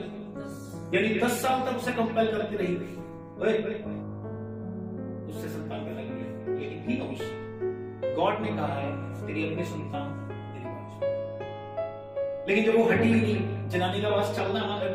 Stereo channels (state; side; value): identical; both; correlation 1.00